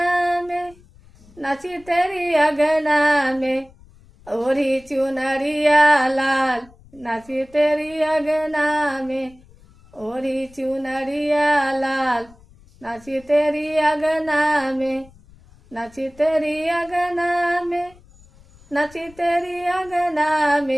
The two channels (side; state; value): left; noise; rumble, 26 dB below the sound